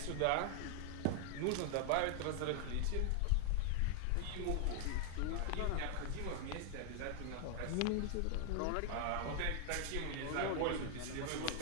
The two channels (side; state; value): both; different; correlation 0.00